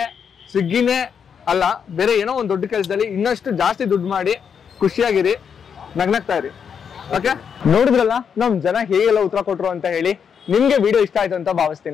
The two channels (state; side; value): quieter; right; 7.1 dB